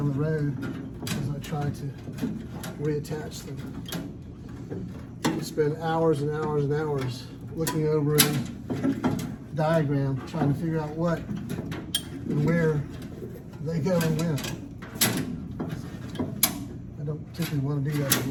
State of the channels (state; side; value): identical; both; correlation 1.00